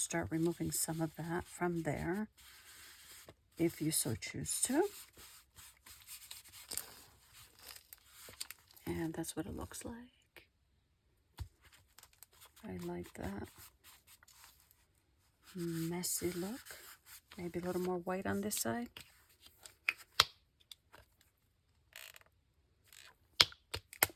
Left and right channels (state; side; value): identical; both; correlation 1.00